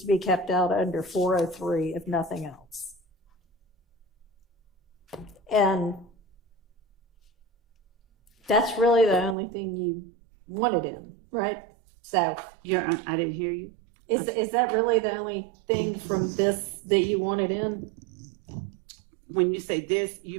to be kept out under 403, if nothing else. And that's really the only thing you wanted in, right? So I didn't hear you. is that really the only thing from this that you wanted in? When you say this,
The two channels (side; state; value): left; drops out; at 9.3 s